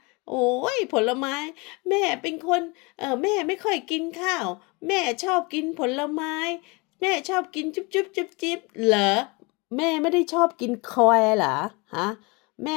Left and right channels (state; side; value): quieter; right; 27.6 dB